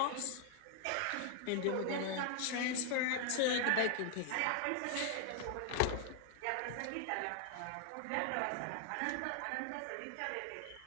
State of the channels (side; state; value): both; different; correlation 0.00